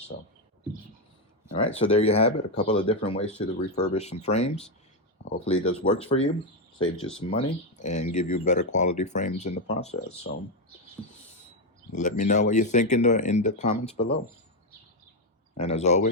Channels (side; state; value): both; normal; correlation 0.06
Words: all right, so there you have it. A couple of different ways to refurbish some frames. Hopefully this works for you, saves you some money, and give you better quality frames in the process. So let me know what you think in the comments below. And as